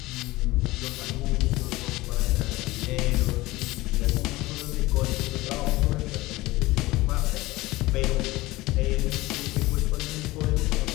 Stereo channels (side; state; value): right; quieter; 19.5 dB